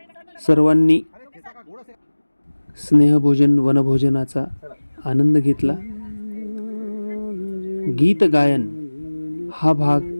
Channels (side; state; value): both; inverted; correlation -1.00